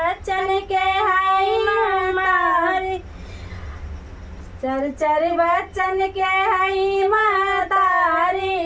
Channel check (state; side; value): identical; both; correlation 1.00